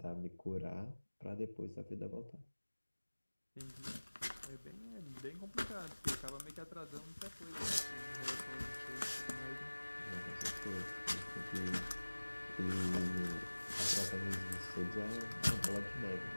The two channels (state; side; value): inverted; both; correlation -1.00